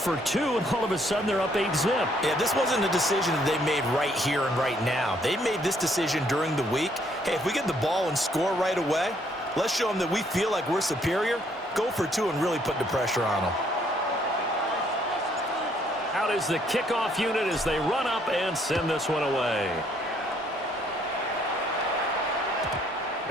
2, and all of a sudden they're up 8-zip. Yeah, this wasn't a decision that they made right here and right now. They made this decision during the week. Hey, if we get the ball and score right away, let's show them that we feel like we're superior. Go for 2 and really put the pressure on them. Out is the kickoff unit as they run up and send this one away.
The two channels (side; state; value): both; normal; correlation 0.67